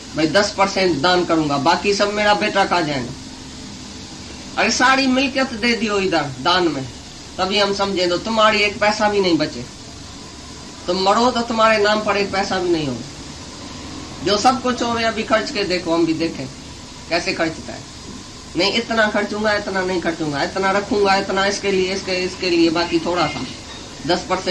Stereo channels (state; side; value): identical; both; correlation 1.00